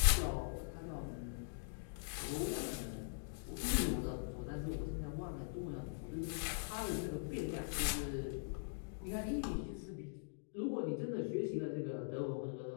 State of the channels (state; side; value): silent; right; digital silence